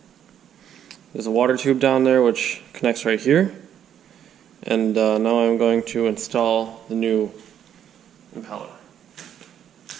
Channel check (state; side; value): quieter; left; 9.6 dB